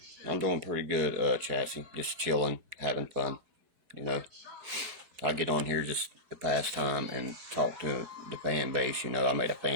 I'm doing pretty good, Chassis. Just chilling, having fun. You know, I get on here just to pass time and talk to the fan base. You know, I made a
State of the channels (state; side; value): late; left; 4.7 ms